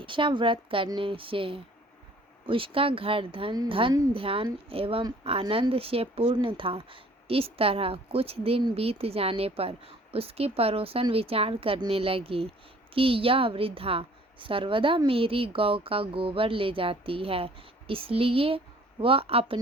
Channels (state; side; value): normal; both; correlation 0.54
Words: व्रत करने से उसका घर धन ध्यान एवं आनंद से पूर्ण था। इस तरह कुछ दिन बीत जाने पर उसकी पड़ोसन विचार करने लगी कि यह वृद्धा सर्वदा मेरी गौ का गोबर ले जाती है, इसलिए वह